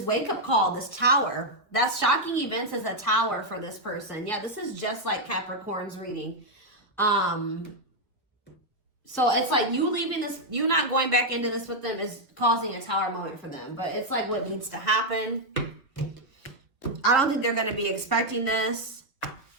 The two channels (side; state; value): both; normal; correlation 0.00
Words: wake-up call, this tower. That's shocking events as a tower for this person. Yeah, this is just like Capricorn's reading. So it's like you leaving this, you not going back into this with them is causing a tower moment for them. But it's like what needs to happen. I don't think they're going to be expecting this.